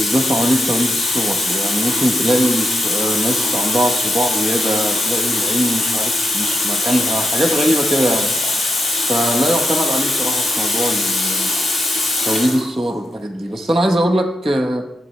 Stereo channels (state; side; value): normal; both; correlation 0.85